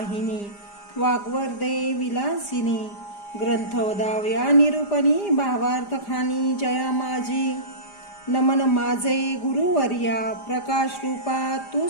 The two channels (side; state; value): right; late; 4.9 ms